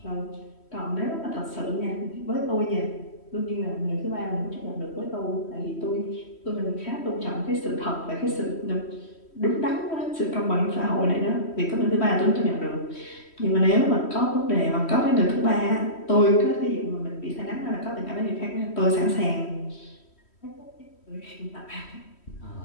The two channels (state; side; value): late; right; 3.1 ms